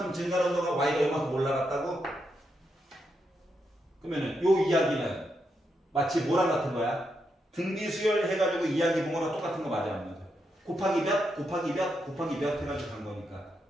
증가한 거가 y가 이만큼 올라갔다고? 그러면은 요 이야기는 마치 뭐랑 같은 거야? 등비 수열 해가지고 이야기 본 거랑 똑같은 거 맞아 안 맞아? 곱하기 몇 해가지고 간 거니까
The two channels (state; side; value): normal; both; correlation 0.82